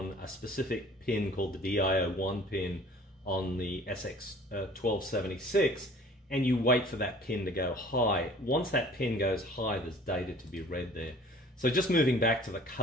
a specific pin called the DIO1 pin on the SX1276, and you wait for that pin to go high. Once that pin goes high, there's data to be read there. So just moving back to the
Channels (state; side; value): normal; both; correlation 0.49